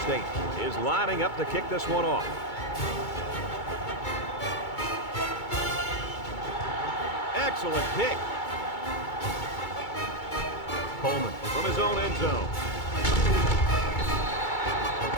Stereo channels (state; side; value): late; right; 2.3 ms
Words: State is lining up to kick this one off. Excellent kick. Coleman from his own end zone.